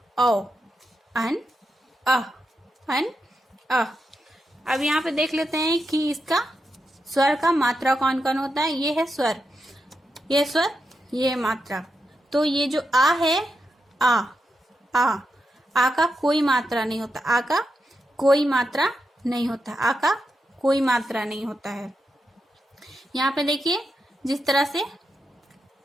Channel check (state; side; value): normal; both; correlation 0.86